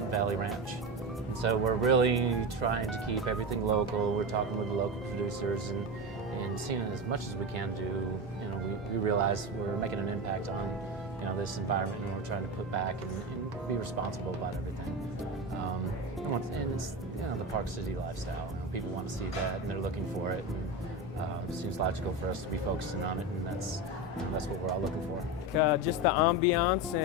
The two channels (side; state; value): both; normal; correlation 0.19